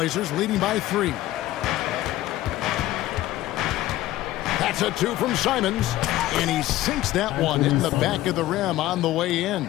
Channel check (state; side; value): quieter; right; 15.4 dB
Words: leading by 3. That's a 2 from Simons, and he sinks that one in the back of the rim on the way in.